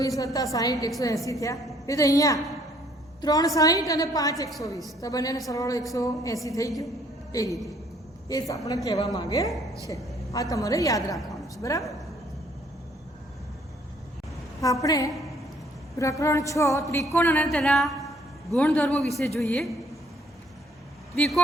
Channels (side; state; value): both; normal; correlation 0.63